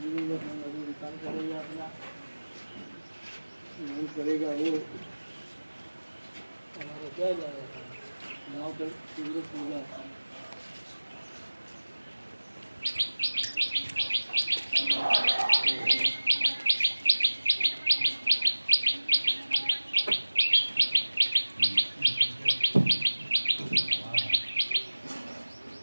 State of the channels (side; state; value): both; inverted; correlation -1.00